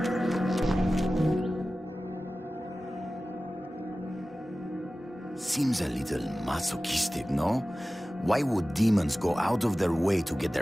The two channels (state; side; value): normal; both; correlation 0.96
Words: Seems a little masochistic, no? Why would demons go out of their way to get